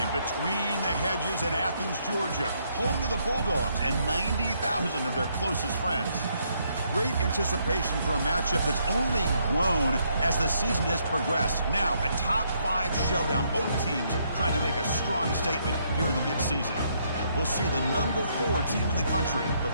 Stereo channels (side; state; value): both; inverted; correlation -0.72